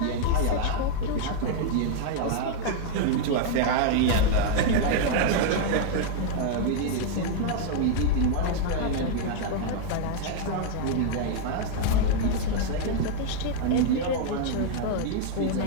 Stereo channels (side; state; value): both; different; correlation 0.00